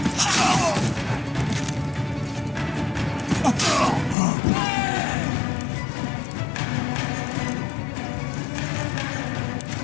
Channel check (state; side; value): drops out; right; at 4.2 s